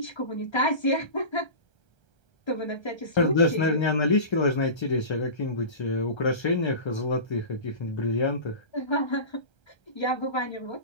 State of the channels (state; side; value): late; right; 1.3 ms